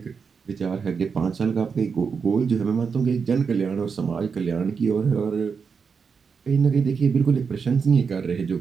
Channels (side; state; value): left; quieter; 5.8 dB